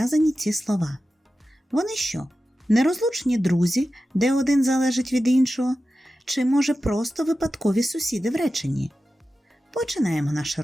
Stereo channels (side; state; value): both; normal; correlation 0.93